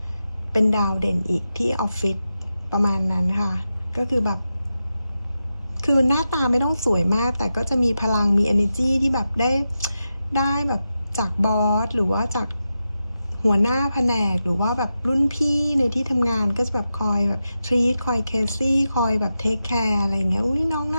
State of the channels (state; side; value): inverted; both; correlation -0.90